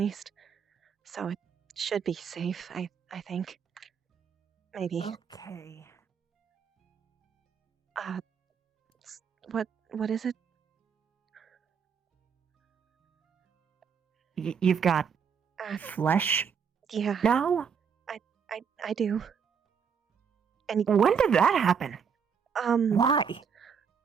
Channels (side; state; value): left; quieter; 6.7 dB